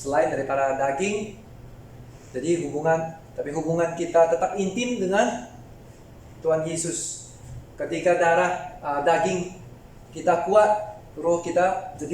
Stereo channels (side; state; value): both; identical; correlation 1.00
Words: daripada daging. Jadi hubungan kita tetap intim dengan Tuhan Yesus. Ketika daging kita kuat, roh kita